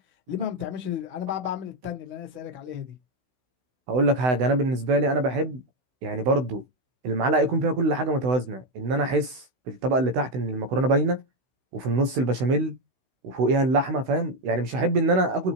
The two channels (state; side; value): late; left; 16 ms